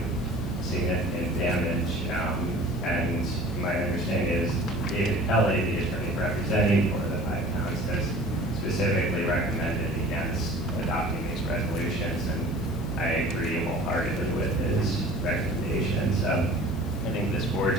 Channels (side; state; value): left; noise; hiss, 23 dB below the sound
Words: significant damage. And my understanding is David Kelly, the attorney representing 4 of the 5 towns, has specifically recommended against adopting these resolutions, and I agree wholeheartedly with his recommendations. I think this board